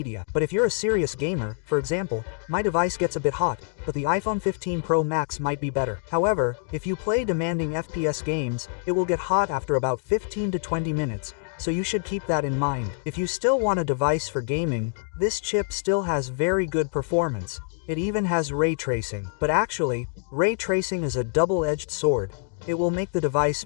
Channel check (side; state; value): right; silent; digital silence